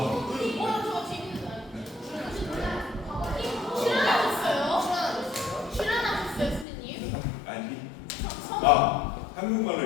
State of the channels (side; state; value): right; drops out; at 6.7 s